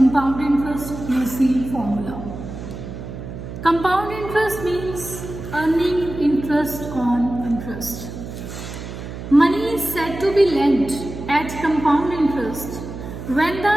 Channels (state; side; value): noise; right; hum, 10 dB below the sound